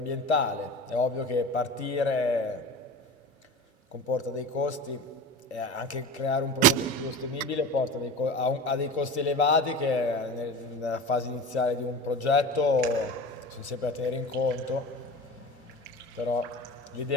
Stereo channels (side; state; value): both; normal; correlation 0.32